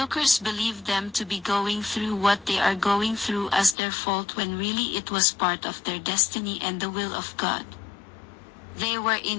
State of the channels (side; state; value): right; drops out; at 3.8 s